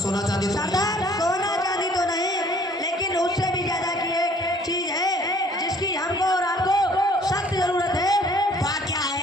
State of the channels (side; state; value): both; normal; correlation 0.57